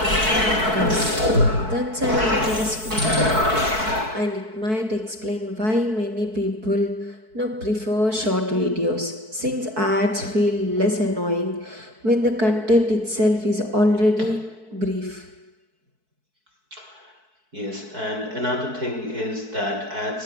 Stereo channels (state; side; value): late; left; 4.6 ms